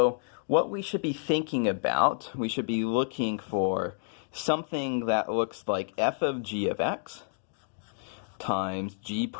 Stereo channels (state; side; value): silent; right; digital silence